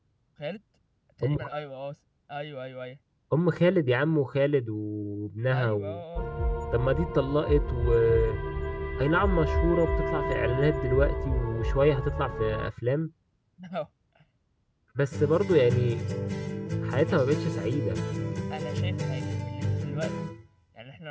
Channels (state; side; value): identical; both; correlation 1.00